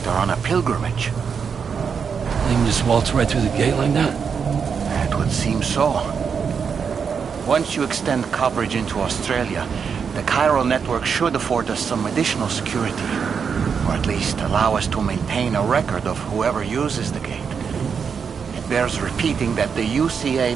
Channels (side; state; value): left; quieter; 6.4 dB